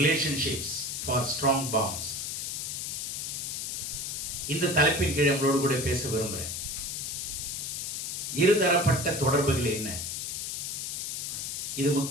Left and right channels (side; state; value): left; noise; hiss, 3 dB below the sound